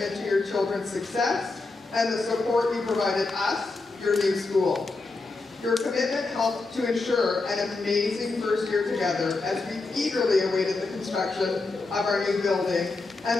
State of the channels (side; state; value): right; quieter; 3.6 dB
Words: to your children's success and the support you provided us, your new school. Your commitment helped to ensure an amazing first year together as we eagerly awaited the construction of our new building